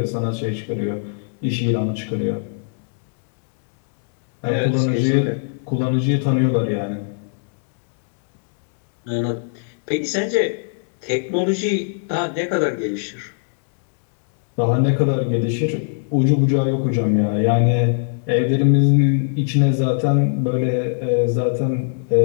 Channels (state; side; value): silent; right; digital silence